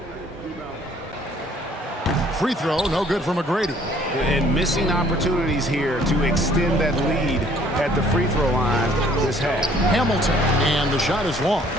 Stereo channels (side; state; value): both; normal; correlation 0.58